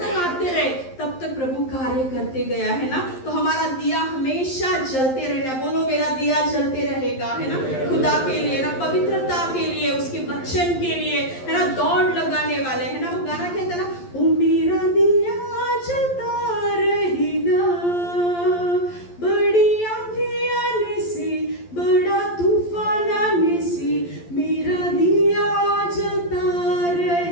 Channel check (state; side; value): late; right; 11 ms